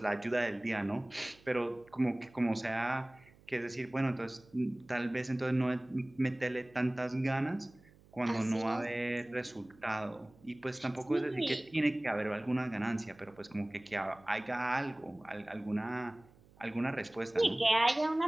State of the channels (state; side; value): noise; right; hum, 26 dB below the sound